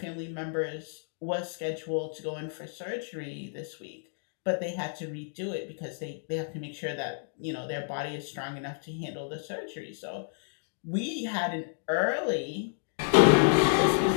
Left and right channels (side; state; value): right; silent; digital silence